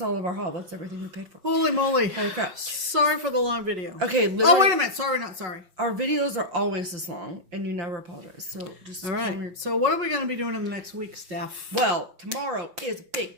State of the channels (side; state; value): left; late; 5.4 ms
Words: all of our haul. That's everything we paid for. Holy moly. Holy crap. Sorry for the long video. Okay, oh, wait a minute. Sorry, not sorry. Our videos are always this long, and you never apologize. So just all right. So what are we going to be doing in the next week, Steph? Well, tomorrow is a